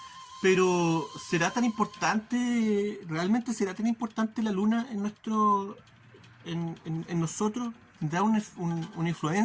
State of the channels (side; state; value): both; identical; correlation 1.00